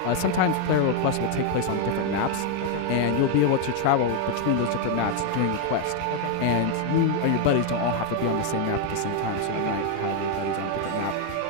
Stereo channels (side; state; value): both; different; correlation 0.00